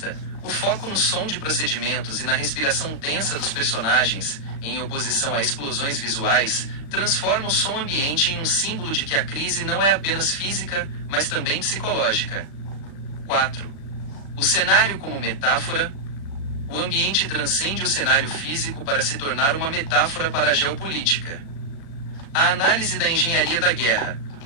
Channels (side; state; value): right; late; 36 ms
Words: O foco no som de procedimentos e na respiração tensa dos personagens, em oposição a explosões visuais, transforma o som ambiente em um símbolo de que a crise não é apenas física, mas também psicológica. 4. O cenário como metáfora. O ambiente transcende o cenário físico para se tornar uma metáfora para a geopolítica. A análise da engenharia da guerra.